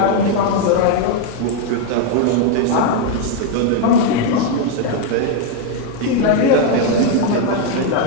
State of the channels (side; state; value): both; different; correlation 0.01